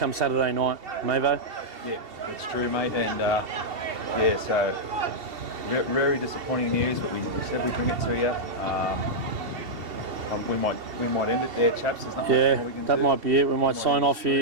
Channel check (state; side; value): late; left; 2.7 ms